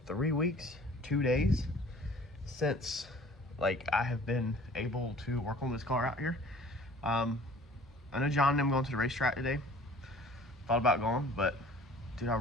3 weeks, 2 days since like I have been able to work on this car out here. I know John and them going to the racetrack today. Thought about going, but dude, I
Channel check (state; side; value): normal; both; correlation 0.50